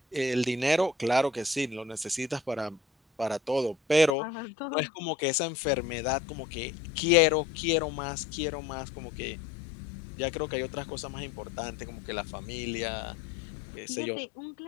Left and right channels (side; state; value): right; drops out; at 4.1 s